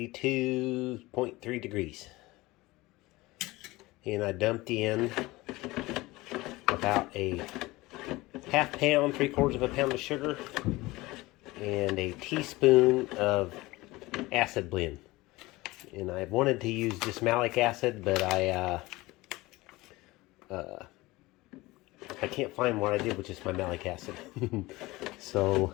degrees. And I dumped in about a half pound, 3/4 of a pound of sugar, and a teaspoon of acid blend. And I wanted to use just malic acid, but I can't find what I did with just my malic acid. So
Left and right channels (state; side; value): quieter; right; 20.4 dB